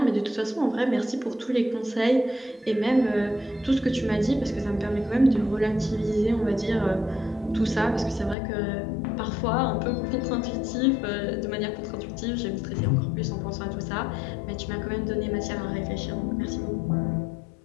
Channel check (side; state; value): right; drops out; at 8.3 s